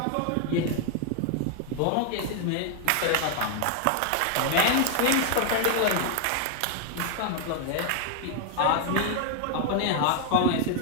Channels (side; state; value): both; different; correlation 0.00